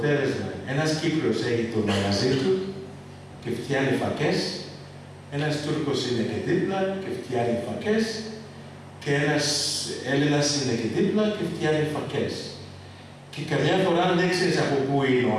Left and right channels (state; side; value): identical; both; correlation 1.00